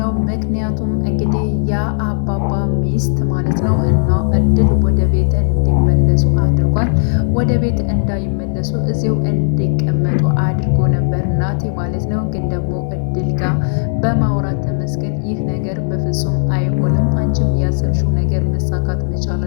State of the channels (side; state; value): right; silent; digital silence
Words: ምክንያቱም እንግዲህ የአባባ ሚስት ማለት ነው እና እድል ወደ ቤት እንዲመለሱ አድርጓል። ወደ ቤት እንዳይመለሱ እዚሁ እንዲቀመጡ አድርጎ ነበር ናቲ ማለት ነው። ግን ደግሞ እድል ጋር በማውራት ተመስገን ይህ ነገር በፍጹም አይሆንም፣ አንቺም ያሰብሽው ነገር መሳካት መቻል